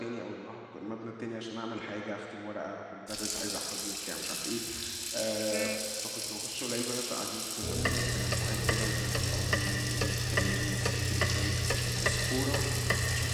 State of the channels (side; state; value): both; identical; correlation 1.00